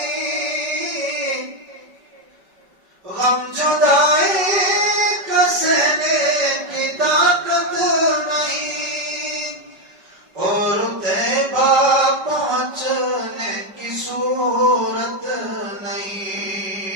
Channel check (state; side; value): late; left; 5.2 ms